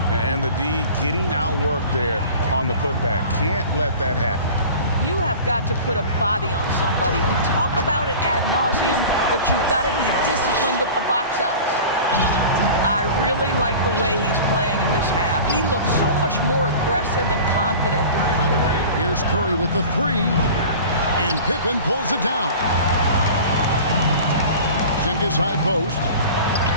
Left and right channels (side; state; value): both; inverted; correlation -0.38